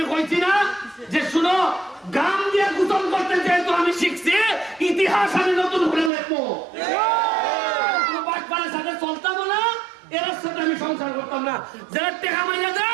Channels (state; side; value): drops out; left; at 6.1 s